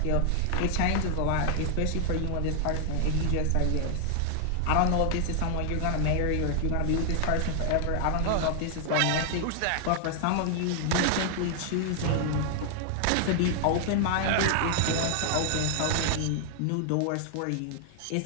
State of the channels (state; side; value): different; both; correlation 0.00